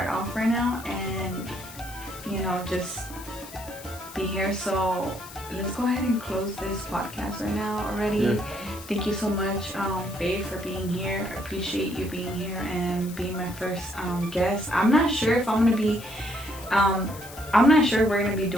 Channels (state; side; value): noise; left; hiss, 16 dB below the sound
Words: off right now, and just be here. So let's go ahead and close this podcast right now already. Yeah. Thank you so much, babe, for being here. I appreciate you being here and being my first guest. I'm not sure if I'm gonna be I'm not sure we're going to be